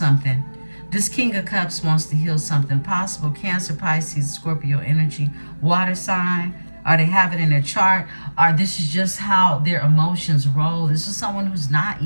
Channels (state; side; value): inverted; both; correlation -1.00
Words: This King of Cups wants to heal something. Possible Cancer, Pisces, Scorpio energy, water sign. Or they have it in their chart. Or this is just how their emotions roll. This is someone who's not